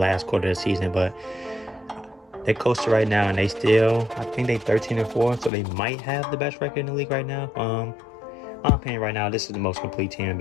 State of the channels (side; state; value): right; drops out; at 5.5 s